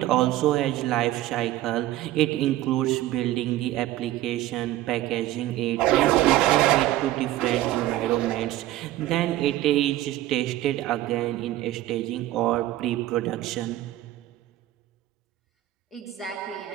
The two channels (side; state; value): left; quieter; 14.9 dB